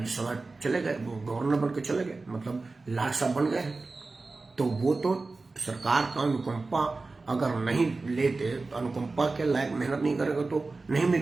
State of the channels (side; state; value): left; quieter; 3.6 dB